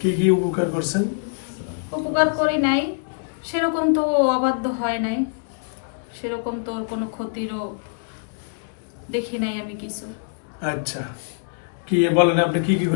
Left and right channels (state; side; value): silent; right; digital silence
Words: কি কি উপকার করছেন? উপকার করি নাই, সেরকম তো ও অবাধ্য হয় নাই, সেরকম তো ওর কোনো ক্ষতিরও দেখি নাই আমি কিছু। আচ্ছা, কি বলেন আপনি কি কি